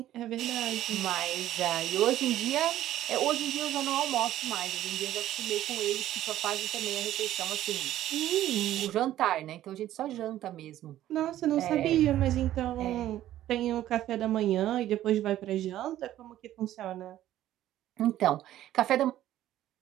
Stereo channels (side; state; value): left; quieter; 13.1 dB